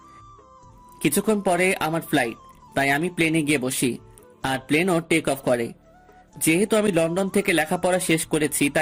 কিছুক্ষণ পরে আমার ফ্লাইট, তাই আমি প্লেনে গিয়ে বসি, আর প্লেনও টেক অফ করে। যেহেতু আমি লন্ডন থেকে লেখাপড়া শেষ করেছি,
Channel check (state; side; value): identical; both; correlation 1.00